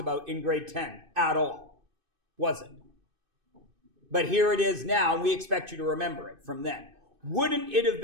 in grade 10 at all. Was it? But here it is now, and we expect you to remember it from then. Wouldn't it have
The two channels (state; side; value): late; left; 2.6 ms